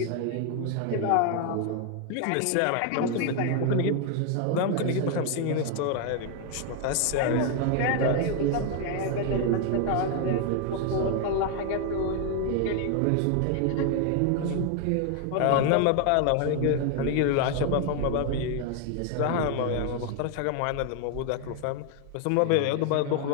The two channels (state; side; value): different; both; correlation 0.01